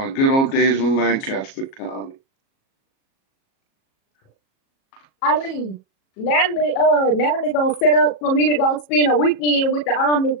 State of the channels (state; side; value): late; right; 37 ms